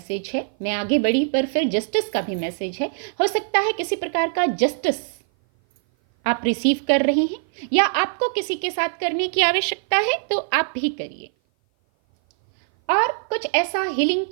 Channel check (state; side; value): silent; left; 57 dB below the other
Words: है, मैं आगे बढ़ी पर फिर जस्टिस का भी मैसेज है। हो सकता है किसी प्रकार का जस्टिस आप रिसीव कर रहे हैं या आपको किसी के साथ करने की आवश्यकता है तो आप भी करिए। और कुछ ऐसा हीलिंग